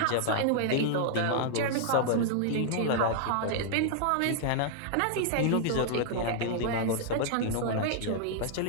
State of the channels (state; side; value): different; both; correlation -0.01